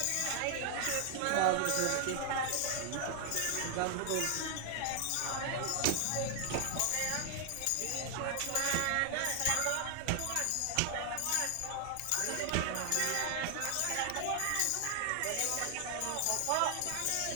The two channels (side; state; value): both; different; correlation 0.00